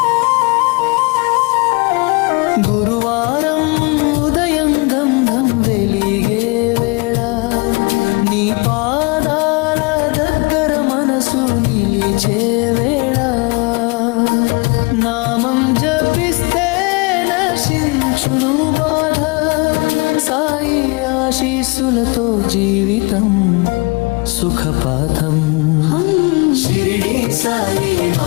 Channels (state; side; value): quieter; right; 28.3 dB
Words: గురువారం ఉదయం గంధం వెలిగే వేళ, నీ పాదాల దగ్గర మనసు నిలిచే వేళ, నామం జపిస్తే నశించును బాధ, సాయి ఆశీస్సులతో జీవితం సుఖపాఠం. షిరిడి సాయి